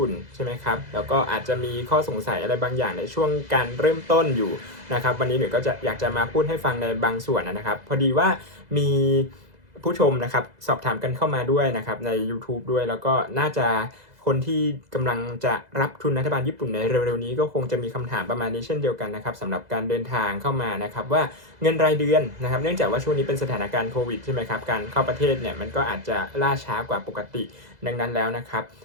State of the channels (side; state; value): left; late; 2.0 ms